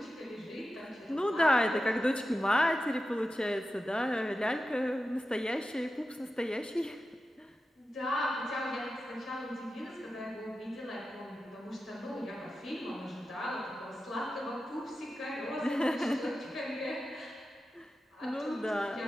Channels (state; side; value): normal; both; correlation 0.92